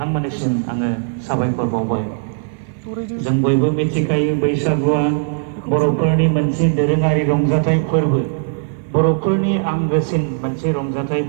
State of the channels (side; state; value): left; silent; 55 dB below the other